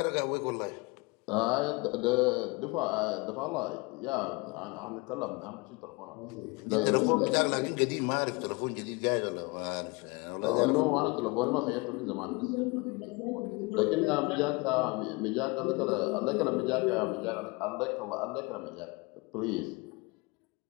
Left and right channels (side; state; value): right; quieter; 26.8 dB